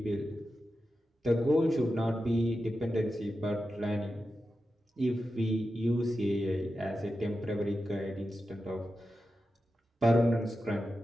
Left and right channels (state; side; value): normal; both; correlation 0.91